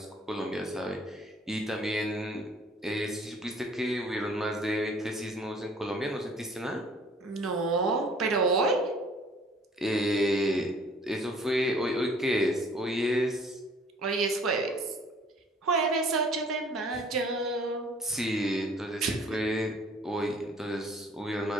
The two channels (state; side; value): normal; both; correlation 0.55